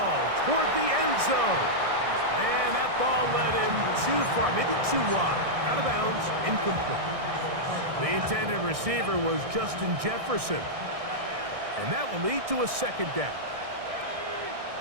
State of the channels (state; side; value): late; left; 1.6 ms